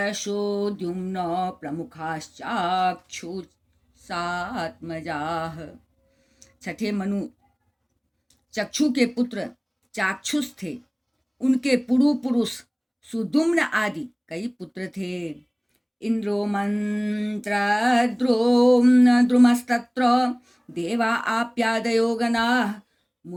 प्रमुखाश्चाक्षुषात्मजाः। छठे मनु चक्षु के पुत्र चाक्षुष थे। उनके पुरु पुरुष सुदुम्न आदि कई पुत्र थे। इंद्रो द्रुमस्तत्र देवा आप्यादयो गणाः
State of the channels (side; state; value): both; identical; correlation 1.00